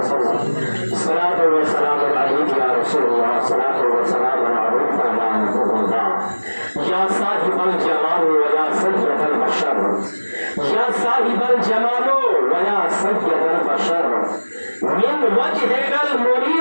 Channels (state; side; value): inverted; both; correlation -1.00